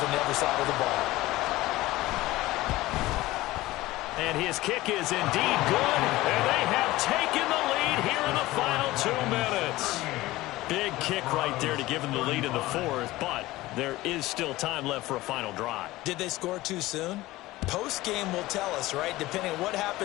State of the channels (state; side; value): quieter; right; 18.1 dB